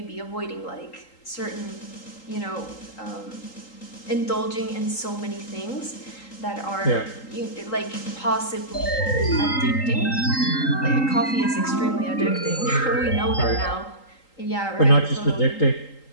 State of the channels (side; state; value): right; late; 3.8 ms